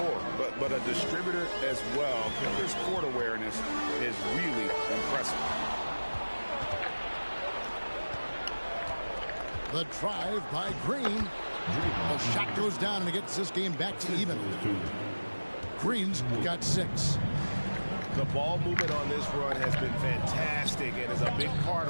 but a distributor as well. Porter's court awareness is really impressive. The drive by Green. The shot goes down and it gets this game back to even. Green's got 6. The ball movement on this run has been fantastic and is a big part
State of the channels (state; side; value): inverted; both; correlation -1.00